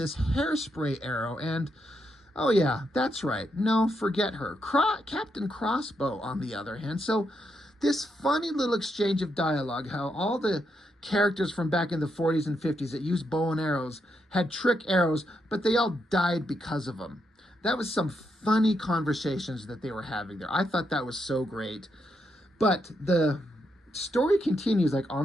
hairspray arrow, and Oh, yeah, that's right. No, forget her. Captain Crossbow, on the other hand. So this funny little exchange of dialogue, how all the characters from back in the 40s and 50s that used bow and arrows had trick arrows, but they all died because of them. That was some funny conversations that they were having there. I thought that was so great. But the story continues, like on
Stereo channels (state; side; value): normal; both; correlation 0.81